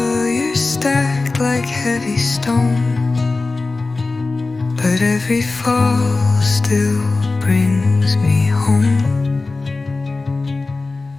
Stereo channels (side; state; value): right; quieter; 3.6 dB